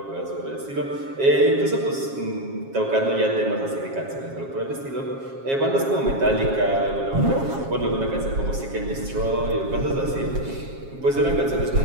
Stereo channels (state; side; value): late; left; 7.4 ms